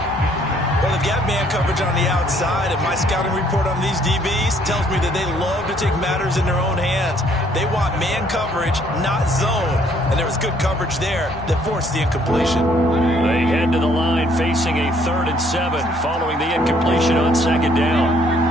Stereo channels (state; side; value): normal; both; correlation 0.64